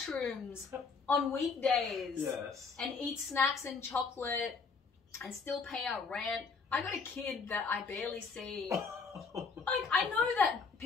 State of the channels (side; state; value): right; quieter; 4.9 dB